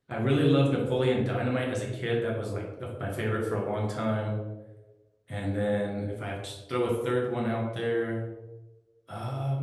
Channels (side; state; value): both; identical; correlation 1.00